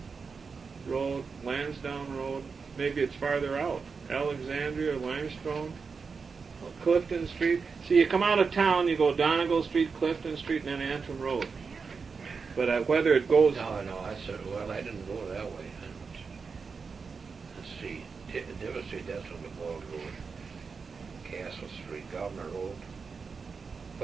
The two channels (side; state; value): left; quieter; 5.1 dB